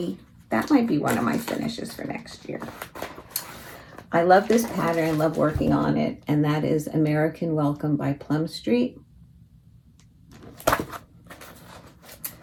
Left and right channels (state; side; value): identical; both; correlation 1.00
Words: that might be one of my finishes for next year. I love this pattern, love working on it, and that is American Welcome by Plum Street.